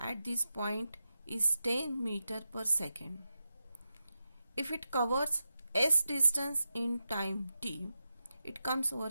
this point is 10 meter per second, if it covers s distance in time t, it comes over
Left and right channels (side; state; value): both; inverted; correlation -0.90